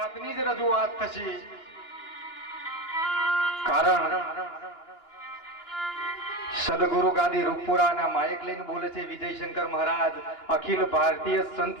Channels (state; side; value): late; right; 2.9 ms